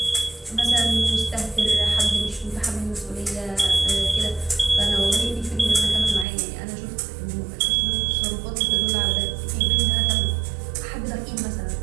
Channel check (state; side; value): drops out; left; at 6.2 s